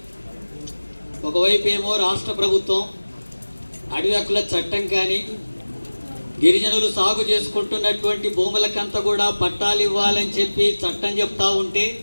ఒకవైపు ఏమో రాష్ట్ర ప్రభుత్వం అడవి హక్కుల చట్టం కానీ గిరిజనులు సాగు చేసుకుంటున్నటువంటి భూములకంతా కూడా పట్టాలు ఇవ్వాలని చెప్పి చట్టం చెప్తా ఉంటే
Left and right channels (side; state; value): both; inverted; correlation -1.00